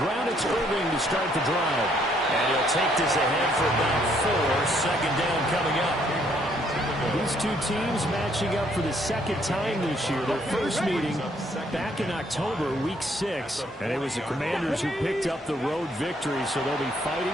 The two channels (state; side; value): normal; both; correlation 0.68